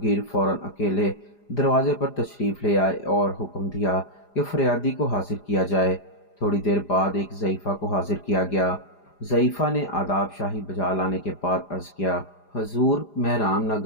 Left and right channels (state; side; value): late; right; 4.9 ms